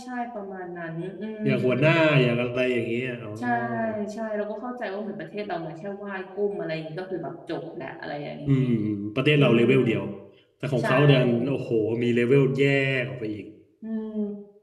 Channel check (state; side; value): identical; both; correlation 1.00